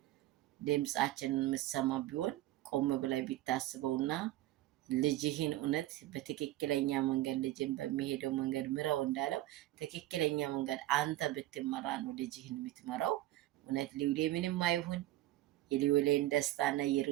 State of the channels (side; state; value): left; quieter; 15.6 dB